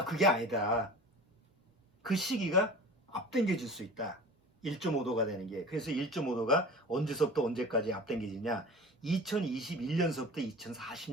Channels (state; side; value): normal; both; correlation 0.38